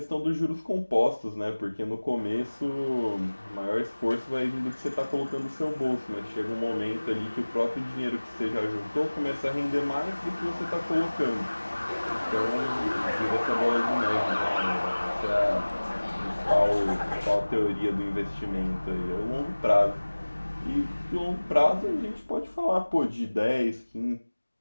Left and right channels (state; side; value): inverted; both; correlation -1.00